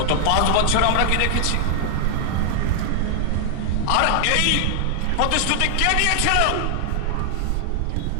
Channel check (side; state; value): both; different; correlation 0.00